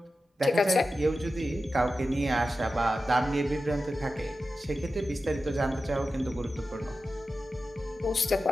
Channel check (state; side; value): normal; both; correlation 0.92